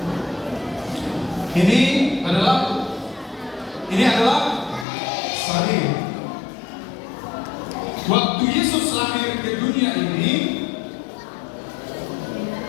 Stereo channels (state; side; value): drops out; right; at 4.9 s